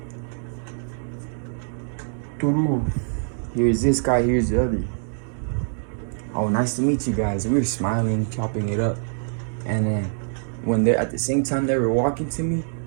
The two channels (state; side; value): silent; left; digital silence